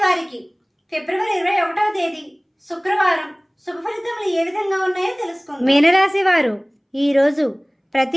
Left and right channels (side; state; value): both; identical; correlation 1.00